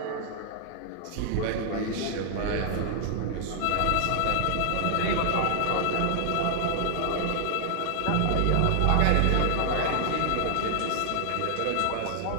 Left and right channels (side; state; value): both; different; correlation 0.00